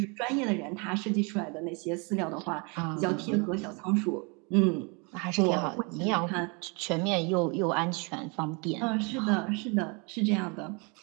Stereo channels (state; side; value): quieter; left; 31.8 dB